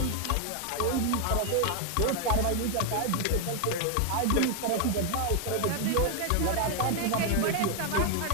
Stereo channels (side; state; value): both; different; correlation 0.00